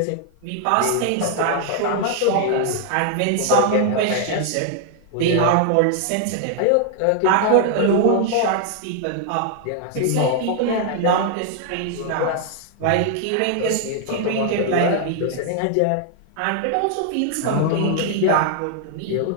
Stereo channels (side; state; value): both; different; correlation 0.00